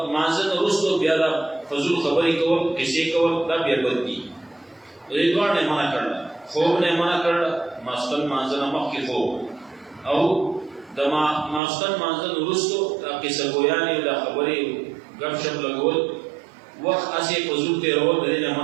لمانځه نه وروسته بیا دا فضول خبرې کول قصې کول دا بیا بد دي. دې دواړو نه منع کړله خوب نه منع کړله ماسخوتن لمانځه نه مخکې خوب او د ماسخوتن لمانځه نه وروستو دا قصه ګویانې دا خبرې ګپ شپ لګول وخت هسې فضول تېرول د دې نه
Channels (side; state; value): left; drops out; at 11.6 s